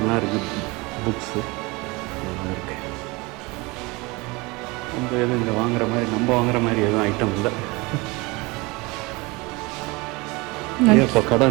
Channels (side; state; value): left; quieter; 24.8 dB